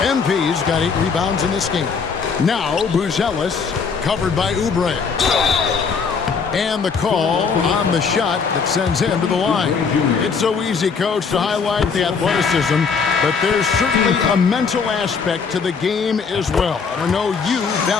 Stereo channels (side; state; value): right; quieter; 5.6 dB